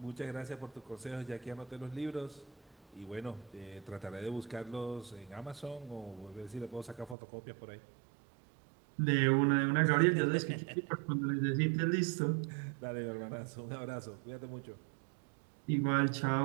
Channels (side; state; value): left; drops out; at 7.2 s